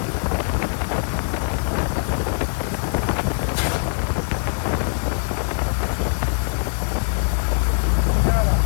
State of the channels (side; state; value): right; silent; 64 dB below the other